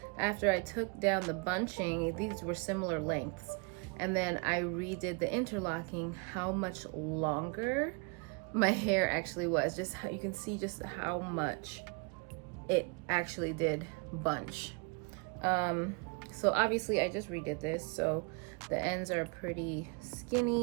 after I took down the bunching, these were similar lengths. And then I redid the interlocking, how much longer my hair actually was. Just how you can see just how much it actually did bunch. So obviously I just redid this, so the ends are pretty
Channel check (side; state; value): left; quieter; 32.9 dB